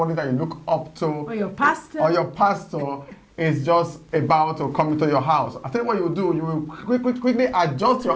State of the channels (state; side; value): identical; both; correlation 1.00